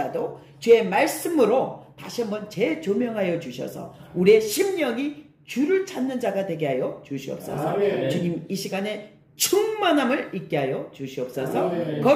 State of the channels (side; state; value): both; identical; correlation 1.00